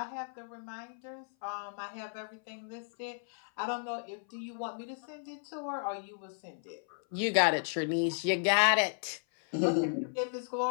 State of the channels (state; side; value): silent; right; 55 dB below the other